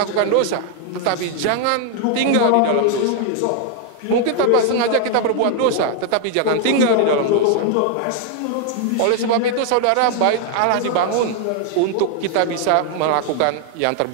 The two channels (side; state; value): both; different; correlation 0.00